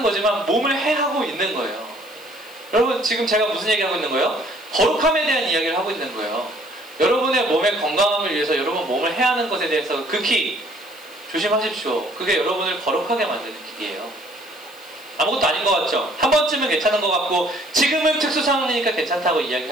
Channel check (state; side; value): noise; left; hiss, 24 dB below the sound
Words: 거지만 몸을 해하고 있는 거예요. 여러분 지금 제가 무슨 얘기하고 있는 거예요? 거룩함에 대한 이야기를 하고 있는 거예요. 여러분의 몸의 건강함을 위해서 여러분 몸을 해하는 것에 대해서 극히 조심하십시오. 그게 여러분을 거룩하게 만드는 길이에요. 아무것도 아닌 것 같죠? 한 번쯤은 괜찮은 것 같고 지금은 특수 상황이니까 괜찮다고